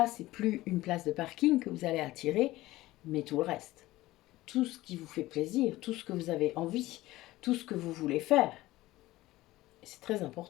c'est plus une place de parking que vous allez attirer, mais tout le reste. Tout ce qui vous fait plaisir, tout ce que vous avez envie, tout ce que vous voulez faire. C'est très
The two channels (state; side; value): quieter; right; 17.5 dB